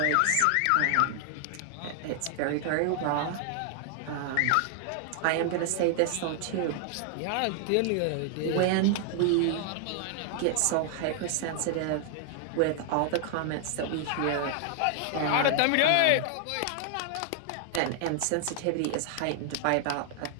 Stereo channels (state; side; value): different; both; correlation 0.00